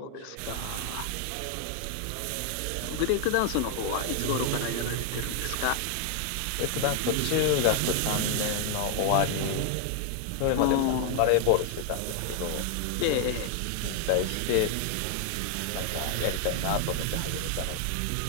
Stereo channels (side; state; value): both; different; correlation 0.00